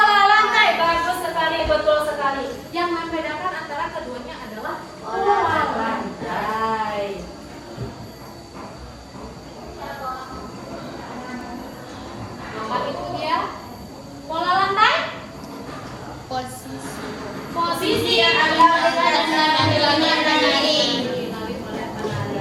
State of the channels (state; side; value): identical; both; correlation 1.00